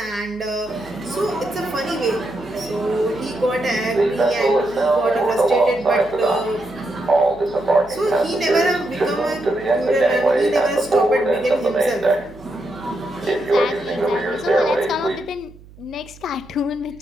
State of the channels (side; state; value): right; noise; hum, 22 dB below the sound